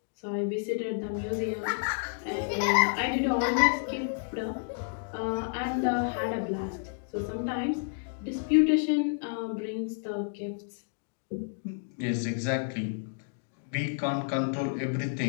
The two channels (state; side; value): silent; right; digital silence